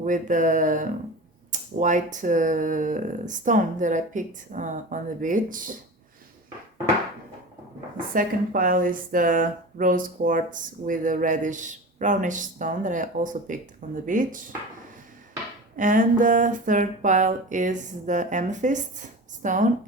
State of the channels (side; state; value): both; normal; correlation 0.32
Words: the white stone that I picked on the beach. The second pile is the rose quartz with a reddish brownish stone that I also picked on the beach. And the third pile is the amethyst stone